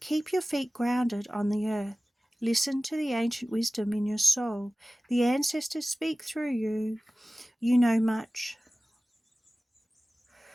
keep your feet grounded on the earth. Listen to the ancient wisdom in your soul. The ancestors speak through you. You know much.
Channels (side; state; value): both; normal; correlation 0.97